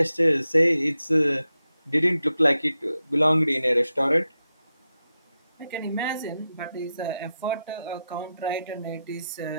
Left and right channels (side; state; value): both; inverted; correlation -0.89